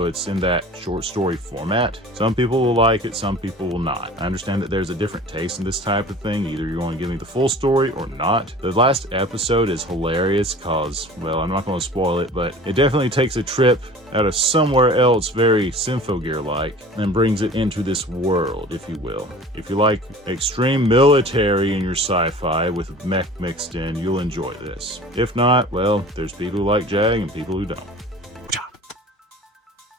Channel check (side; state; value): both; normal; correlation 0.42